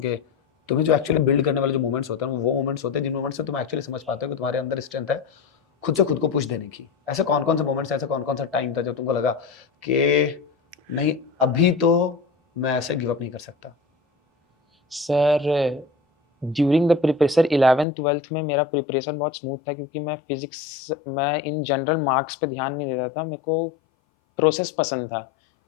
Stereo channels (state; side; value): drops out; right; at 17.9 s